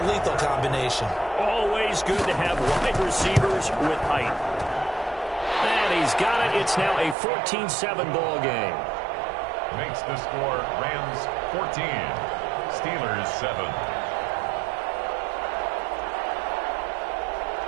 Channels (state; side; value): drops out; left; at 7.2 s